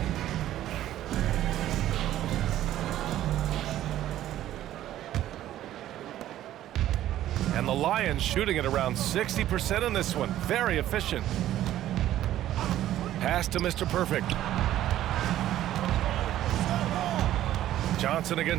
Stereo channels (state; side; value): quieter; left; 13.0 dB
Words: And the Lions shooting at around 60% in this one. Very efficient. Pass to Mr. Perfect. Johnson